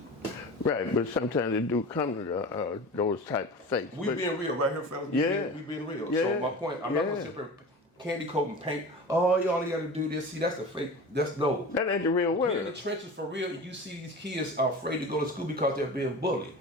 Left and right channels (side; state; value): both; normal; correlation 0.34